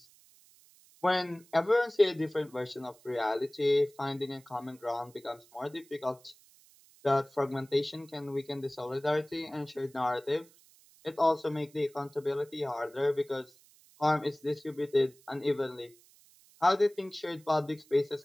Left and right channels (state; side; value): noise; right; hiss, 27 dB below the sound